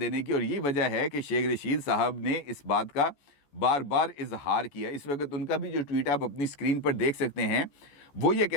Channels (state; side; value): late; right; 14 ms